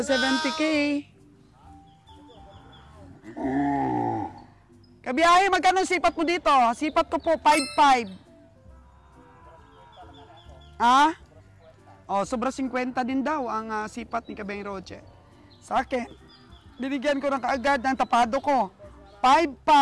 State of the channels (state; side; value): identical; both; correlation 1.00